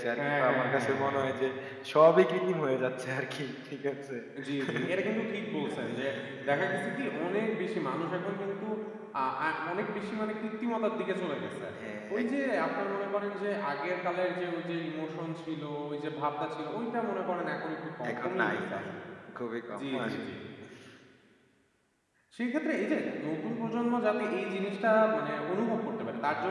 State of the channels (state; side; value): identical; both; correlation 1.00